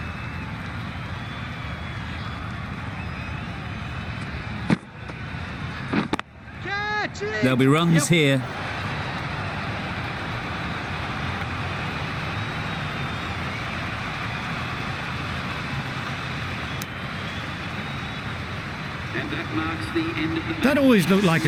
Catch it. There'll be runs here. That always looked like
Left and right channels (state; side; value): identical; both; correlation 1.00